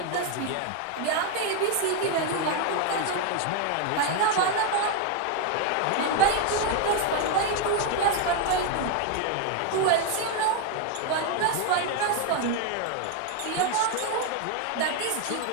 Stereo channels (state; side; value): different; both; correlation 0.01